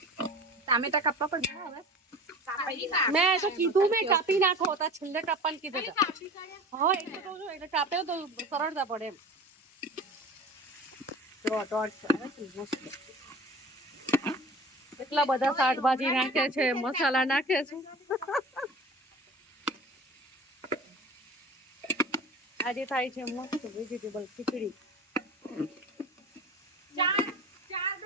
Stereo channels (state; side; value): normal; both; correlation 0.38